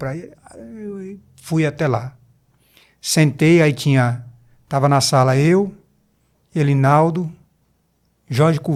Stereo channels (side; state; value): both; identical; correlation 1.00